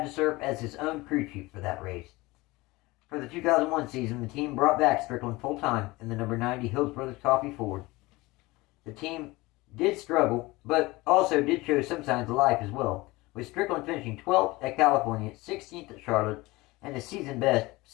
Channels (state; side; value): quieter; right; 21.4 dB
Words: to serve as his own crew chief for that race. For the 2001 season, the team brought back Strickland full-time in the number 90 Hills Brothers Coffee Ford. The team did struggle, but also did show some signs of life as well, with Strickland finishing 12th at California, 16th at Charlotte, and the season best